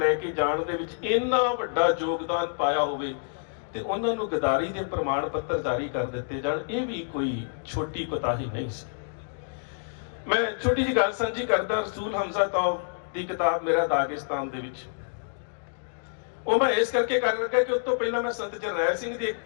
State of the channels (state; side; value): silent; right; digital silence